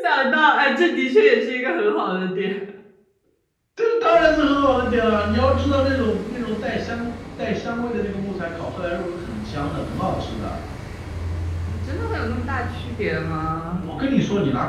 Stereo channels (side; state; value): both; identical; correlation 1.00